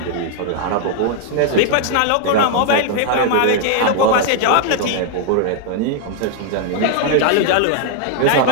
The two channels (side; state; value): both; different; correlation -0.01